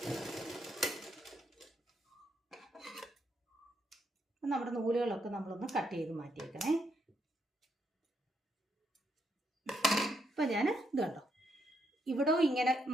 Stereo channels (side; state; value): both; normal; correlation 0.77